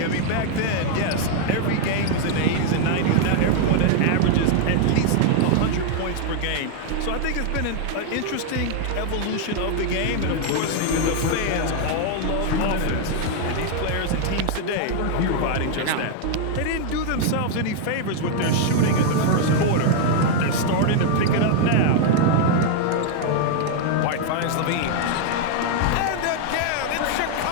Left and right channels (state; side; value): different; both; correlation 0.00